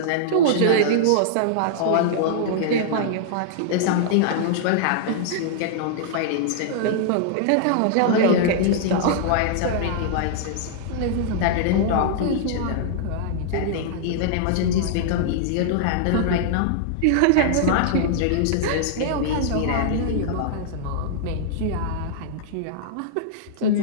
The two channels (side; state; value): both; different; correlation -0.01